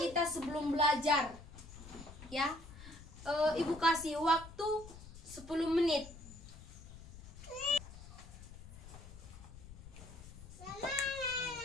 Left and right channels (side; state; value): left; noise; rumble, 15 dB below the sound